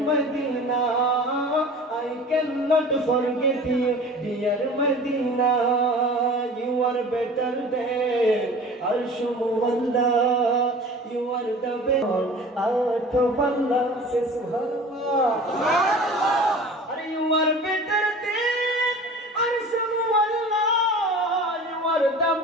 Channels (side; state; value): both; normal; correlation 0.41